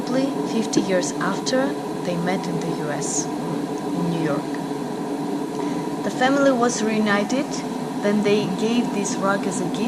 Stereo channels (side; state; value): both; identical; correlation 1.00